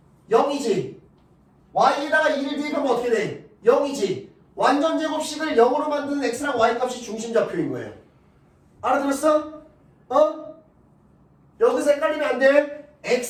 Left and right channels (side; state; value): both; identical; correlation 1.00